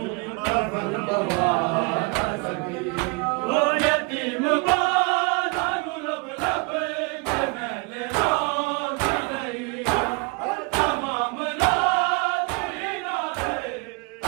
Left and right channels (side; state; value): left; quieter; 30.7 dB